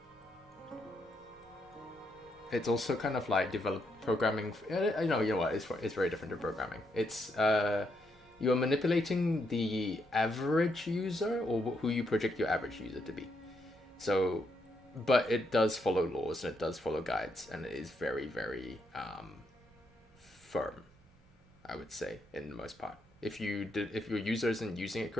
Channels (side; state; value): both; normal; correlation 0.78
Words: It's also kind of like programming. You know what? It's very different to programming. It's you're manipulating the average user, or who you project your average user to be. So, but it does follow laws and it does follow guides, and it is very, very firm, I would say, in the most part. If your user isn't using it